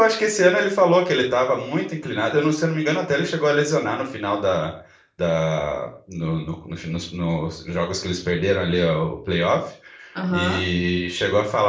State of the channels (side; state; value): both; identical; correlation 1.00